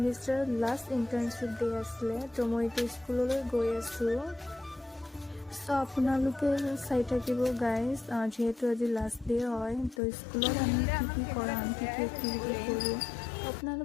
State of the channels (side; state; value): right; drops out; at 10.0 s